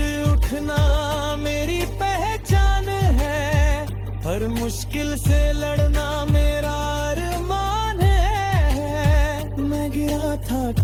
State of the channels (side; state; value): both; identical; correlation 1.00